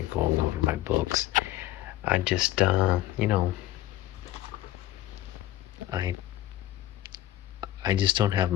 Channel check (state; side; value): quieter; right; 14.6 dB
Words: of going over my books. I just, I just don't have